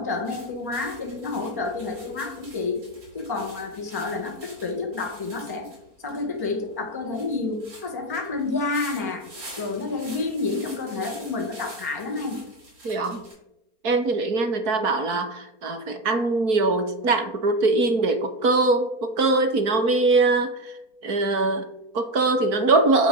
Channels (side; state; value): left; late; 4.3 ms